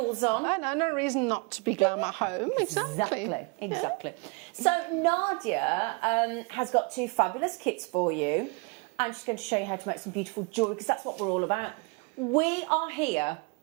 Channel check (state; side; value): quieter; left; 30.2 dB